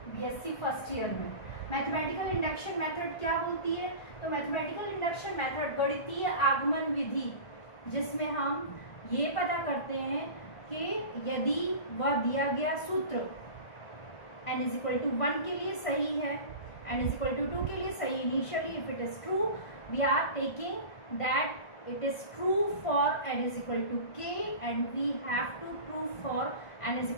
BSc फर्स्ट ईयर में। मैथमेटिकल इंडक्शन मेथड क्या बोलती है? तो मैथमेटिकल इंडक्शन मेथड गणितीय आगमन विधि, जिसमें हम ये पता करते हैं कि यदि वह दिया गया सूत्र n इज इक्वल टू 1 के लिए सही है, n इज इक्वल टू 2 के लिए सही initially, if it is true we are taking that it is true for n is equal to k and we have to prove for n is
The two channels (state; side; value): late; right; 1.5 ms